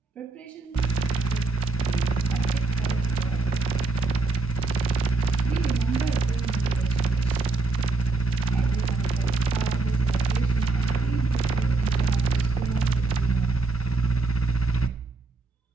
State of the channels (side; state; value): left; quieter; 3.6 dB